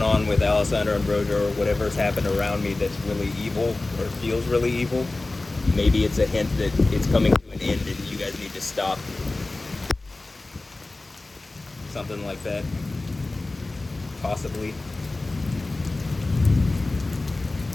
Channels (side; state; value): right; quieter; 3.1 dB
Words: on with Alessandro and Brojo, or whatever's happened around me that's really evil, or feels really evil. Maybe it's a hint that it's coming to an end and you guys need to stop. Something like that. Possibly.